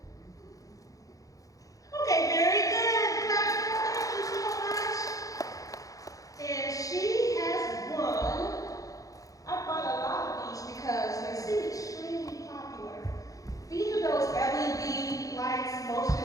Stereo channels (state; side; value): late; right; 0.17 ms